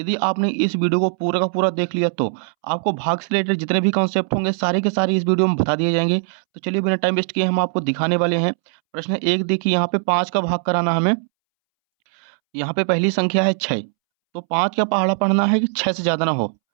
आपने इस वीडियो को पूरा का पूरा देख लिया तो आपको भाग से रिलेटेड जितने भी कॉन्सेप्ट होंगे सारे के सारे इस वीडियो में बता दिए जाएंगे। तो चलिए बिना टाइम वेस्ट किए हम आपको दिखाने वाले हैं। प्रश्न एक देखिए, यहाँ पे 5 का भाग कराना हमें। यहाँ पे पहली संख्या है 6, तो 5 का पहाड़ा पढ़ना है कि 6 से ज़्यादा ना हो।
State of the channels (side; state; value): left; silent; 66 dB below the other